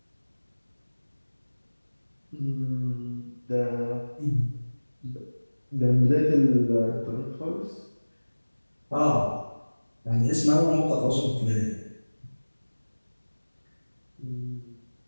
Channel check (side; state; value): both; inverted; correlation -1.00